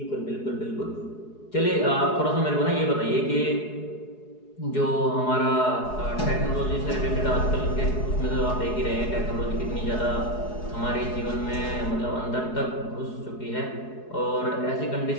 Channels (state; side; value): late; right; 4.7 ms